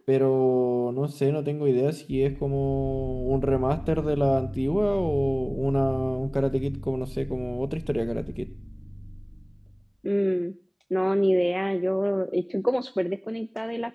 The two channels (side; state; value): both; identical; correlation 1.00